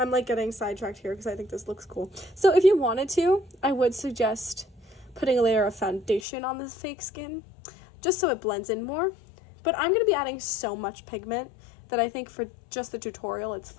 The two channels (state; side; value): drops out; right; at 6.2 s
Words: like getting sidetracked here because I think this looks cool. So if you wanted to, I would suggest putting a layer of foundation on this fake skin just so it blends in more. But I'm going to be adding so much pigment that I think for just the tutorial, it's